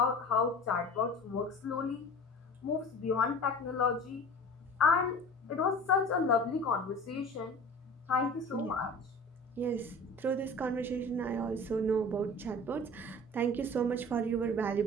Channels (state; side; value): normal; both; correlation 0.40